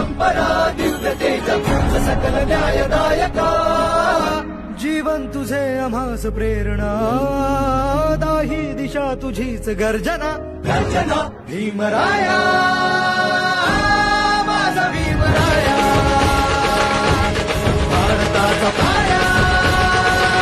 दिव्यतेचा तुझ सकल न्यायदायका जीवन तुझे आम्हास प्रेरणा दाही दिशा तुझीच गर्जना गर्जना भीमराया माझा भीमराया भारताचा पाया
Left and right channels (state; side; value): identical; both; correlation 1.00